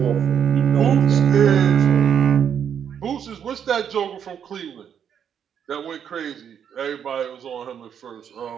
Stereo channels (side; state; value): left; quieter; 8.4 dB